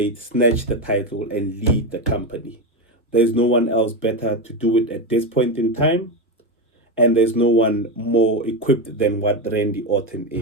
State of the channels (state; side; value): normal; both; correlation 0.14